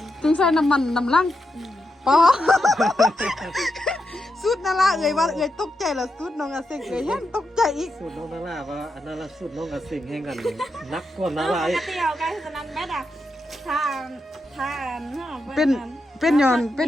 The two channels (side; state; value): both; normal; correlation 0.85